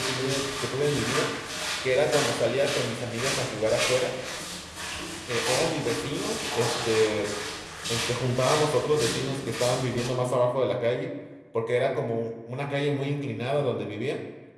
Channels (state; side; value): identical; both; correlation 1.00